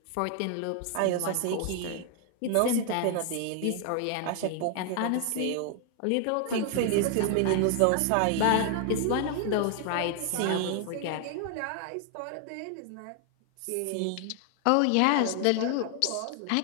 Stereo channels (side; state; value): both; different; correlation 0.00